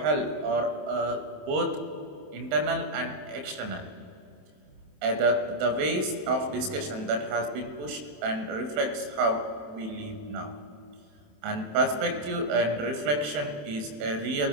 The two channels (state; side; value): late; left; 27 ms